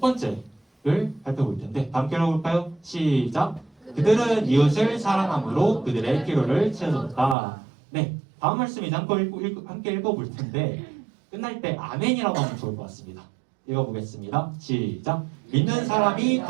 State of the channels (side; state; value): left; drops out; at 7.4 s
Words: 번째를 발표해볼 텐데 다 함께 읽어볼까요? 시작! 그들은 이웃을 사랑함으로 그들의 필요를 채워줬다. 네, 다음 말씀 이제 함께 읽어볼 텐데 끝날 때 아멘이라고 하면 좋을 것 같습니다. 읽어보겠습니다. 시작! 믿는 사람이